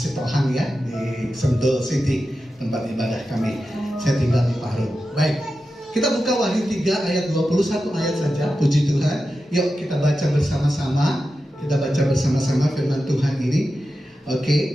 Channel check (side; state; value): both; normal; correlation 0.91